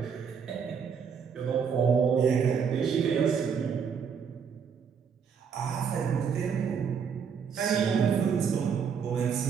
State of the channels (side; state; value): left; quieter; 6.7 dB